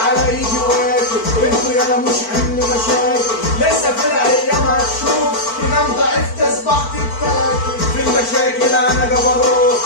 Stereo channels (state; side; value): late; right; 4.5 ms